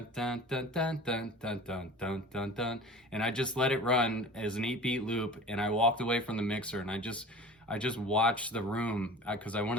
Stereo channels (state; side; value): normal; both; correlation 0.39